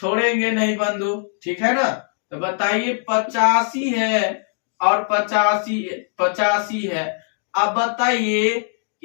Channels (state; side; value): silent; right; 65 dB below the other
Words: नहीं बंधु। ठीक है ना, तो बताइए 85 है और 85 है। अब बताइए